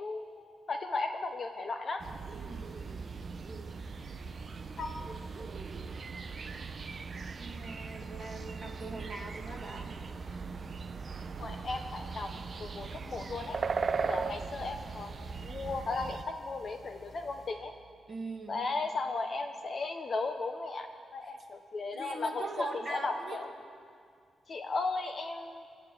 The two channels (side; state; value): both; normal; correlation 0.83